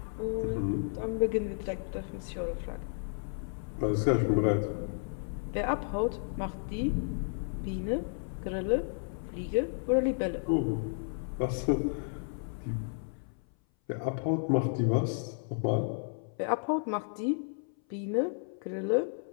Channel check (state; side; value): silent; right; 56 dB below the other